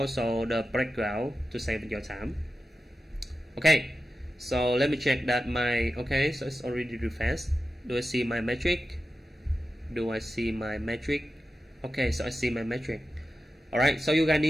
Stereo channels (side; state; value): both; normal; correlation 0.93